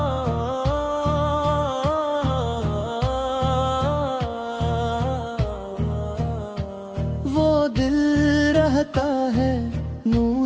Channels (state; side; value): identical; both; correlation 1.00